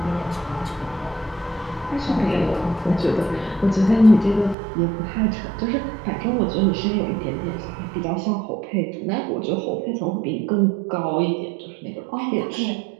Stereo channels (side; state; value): left; drops out; at 4.5 s